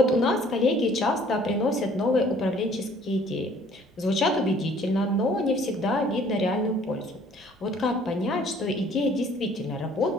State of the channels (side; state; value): both; normal; correlation 0.57